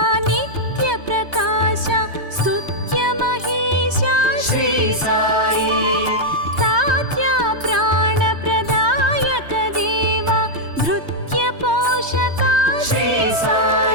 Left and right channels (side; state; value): left; late; 3.2 ms